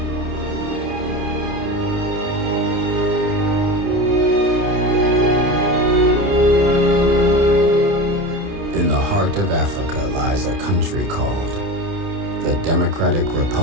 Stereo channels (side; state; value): left; late; 29 ms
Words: Of Africa lies a country called the Democratic